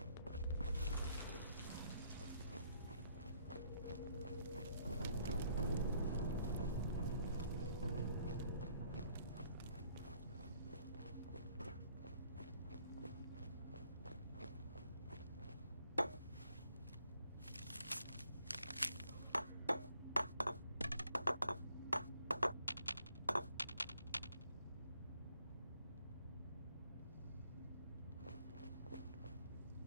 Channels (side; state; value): both; inverted; correlation -0.67